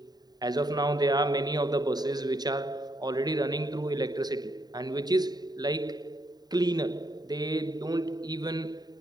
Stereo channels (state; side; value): late; left; 0.20 ms